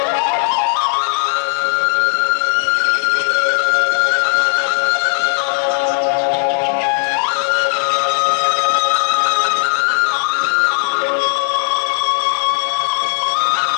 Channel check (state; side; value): silent; right; 69 dB below the other